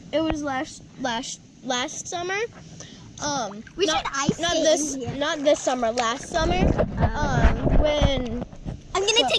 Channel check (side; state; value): both; identical; correlation 1.00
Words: It was last summer. We should ice skate not this summer. Last summer. When. I'm gonna